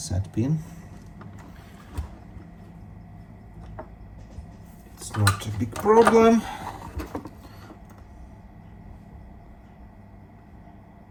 pin. It's not a big problem.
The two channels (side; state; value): both; identical; correlation 1.00